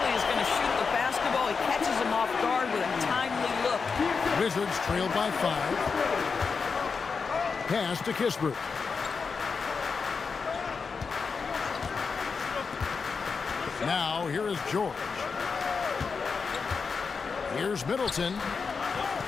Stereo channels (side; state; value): right; quieter; 5.2 dB